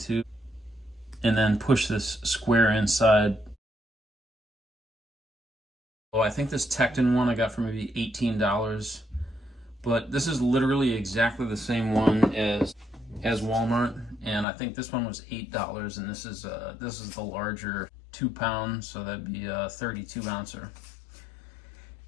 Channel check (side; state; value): right; drops out; at 14.5 s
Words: and then push this square inside. Oh, I think this Tekton one I got for maybe $18, but this is literally exactly the same one as Walmart, and I think this one was $8, and this is the larger 2 pound, so that'd be a 32 ouncer.